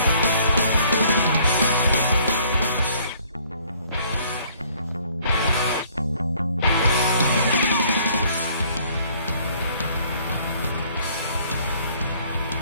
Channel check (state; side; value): inverted; both; correlation -0.60